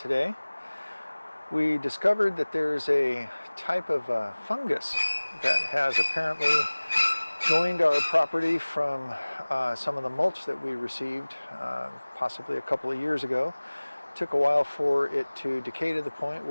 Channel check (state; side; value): inverted; both; correlation -1.00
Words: We discovered that there's a type of fungus that has apparently joined our property from some of the mulch that we received possibly a couple of years ago. It took a while for it to decay to the point